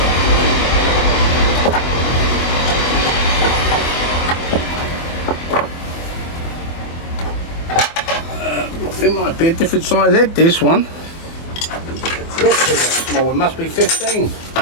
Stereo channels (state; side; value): late; right; 24 ms